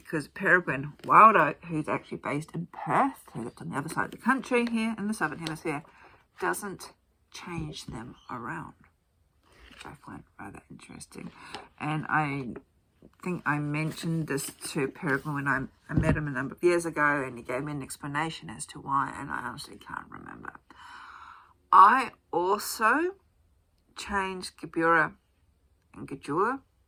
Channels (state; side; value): identical; both; correlation 1.00